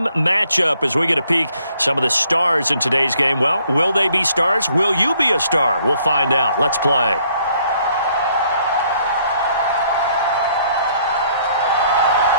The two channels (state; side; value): inverted; both; correlation -0.66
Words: matchup as we get a peek some of the stars in today's game. Well, will they be stars? Will you be a star? We'll find out. Let's play.